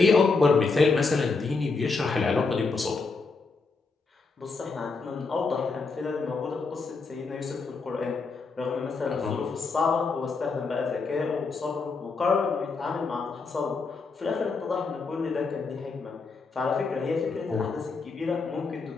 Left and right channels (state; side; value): quieter; right; 4.3 dB